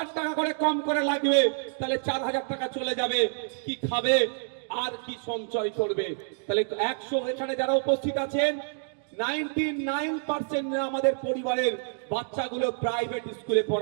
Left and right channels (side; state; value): left; silent; digital silence